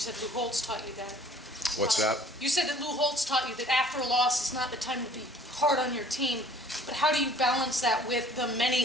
Lou Holtz taught you that. What's that? You said that Lou Holtz taught you that after a loss is not the time to be hard on your team. But how do you balance that with the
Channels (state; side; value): normal; both; correlation 0.53